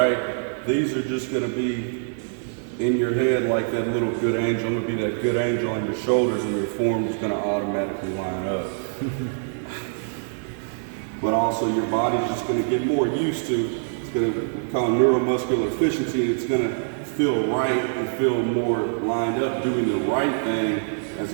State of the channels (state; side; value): silent; left; 62 dB below the other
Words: These are just going to be in your head like that little good angel. I'm going to be that good angel on your shoulders, and your form is going to automatically line up. But also, your body's just going to get more used to. Going to call neuromuscular efficiency. It's going to feel right and feel more lined up doing the right thing as